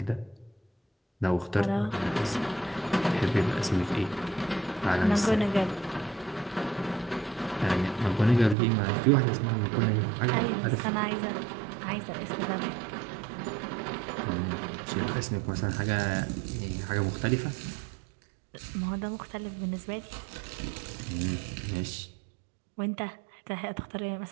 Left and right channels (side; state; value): left; drops out; at 8.6 s